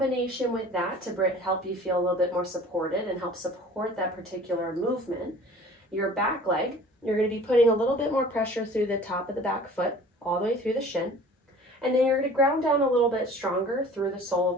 with that, to help you feel a little bit more supported and help support that particular movement, your back leg, you're going to be putting a little bit more pressure through the top of the back foot, all the way through the shin. And then you're going to ground down a little bit stronger through the sole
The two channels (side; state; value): both; normal; correlation 0.46